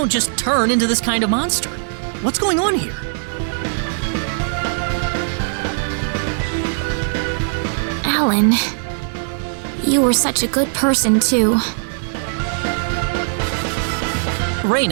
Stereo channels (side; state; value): left; silent; digital silence